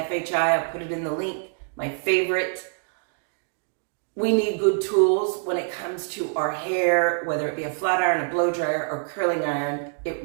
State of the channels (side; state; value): left; silent; 62 dB below the other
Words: I put it in the link, my favorite. We need good tools when it comes to our hair, whether it be a flat iron, a blow dryer, or curling iron. It